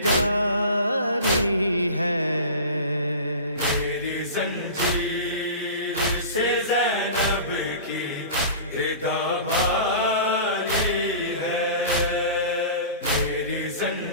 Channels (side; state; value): both; inverted; correlation -0.35